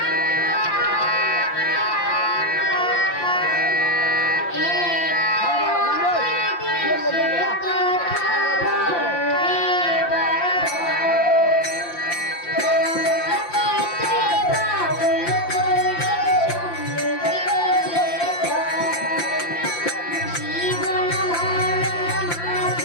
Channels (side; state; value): right; late; 5.8 ms